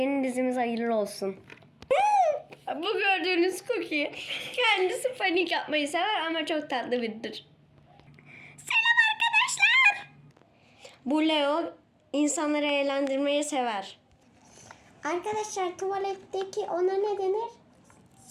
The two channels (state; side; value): identical; both; correlation 1.00